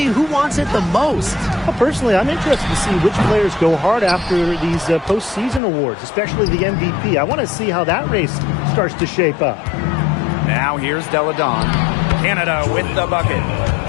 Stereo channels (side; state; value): right; drops out; at 5.6 s